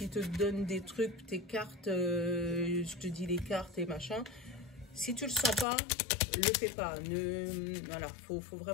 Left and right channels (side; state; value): right; drops out; at 5.7 s